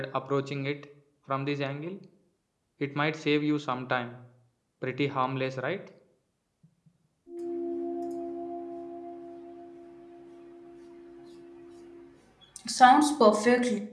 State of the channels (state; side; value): identical; both; correlation 1.00